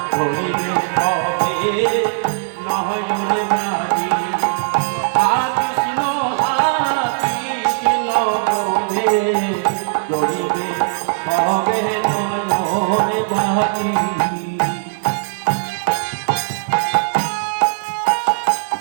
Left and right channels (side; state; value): left; silent; digital silence